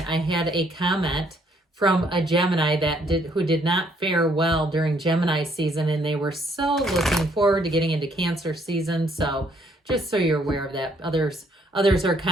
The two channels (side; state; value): both; normal; correlation 0.67